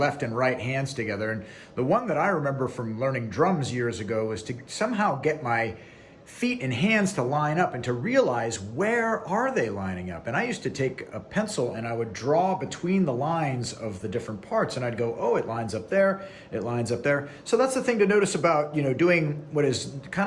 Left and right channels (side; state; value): both; identical; correlation 1.00